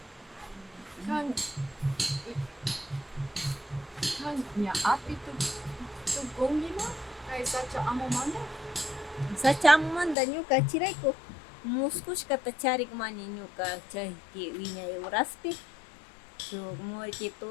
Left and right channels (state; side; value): drops out; right; at 10.2 s